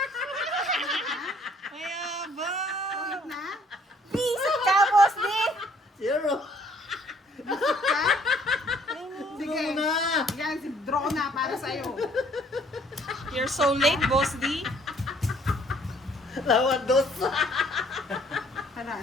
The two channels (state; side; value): normal; both; correlation 0.61